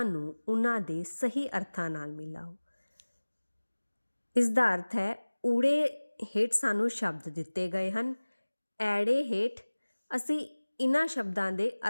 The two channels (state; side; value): inverted; both; correlation -1.00